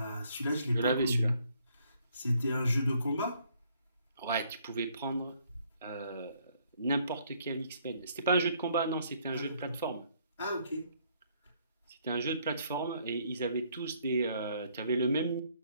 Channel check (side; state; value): both; inverted; correlation -0.66